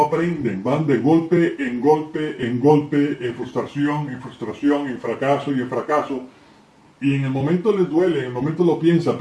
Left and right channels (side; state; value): both; identical; correlation 1.00